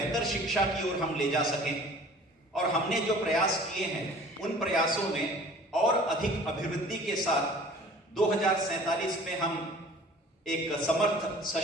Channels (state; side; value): normal; both; correlation 0.48